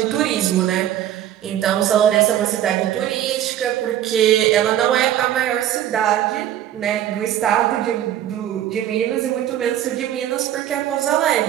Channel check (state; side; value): quieter; left; 11.6 dB